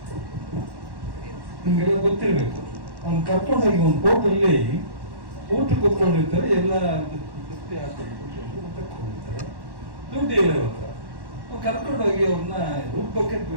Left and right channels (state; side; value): late; left; 1.1 ms